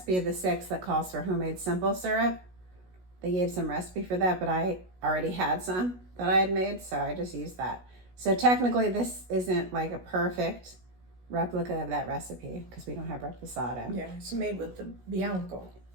of the 6 that calls for homemade simple syrup. They gave some recipe for that, but I already had some that I had made, so I just used that. So technically this isn't like a perfect replica of that recipe because we don't have reposado. Yeah, it's made with the Bianco.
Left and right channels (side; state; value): left; late; 16 ms